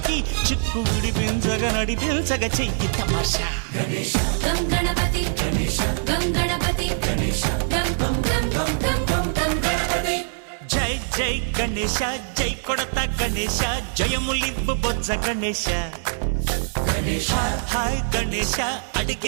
చిక్కు విడిపించగా నడిపించగా చెయ్యి తమాషా గం గణపతి గం గణపతి గం గం గం గం గం గణపతి జై జై గణేశ జై కొడత గణేశ జయములివ్వు బొజ్జ గణేశ హాయ్ గణేశ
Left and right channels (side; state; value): left; silent; 63 dB below the other